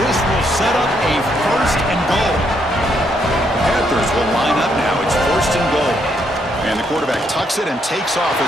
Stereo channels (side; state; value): both; normal; correlation 0.74